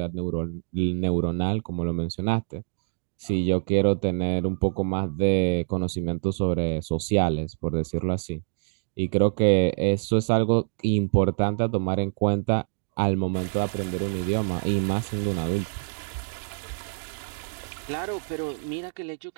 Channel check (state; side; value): silent; left; digital silence